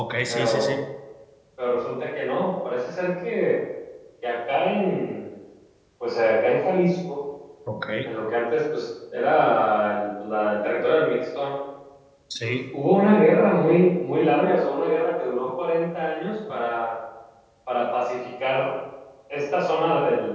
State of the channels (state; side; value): identical; both; correlation 1.00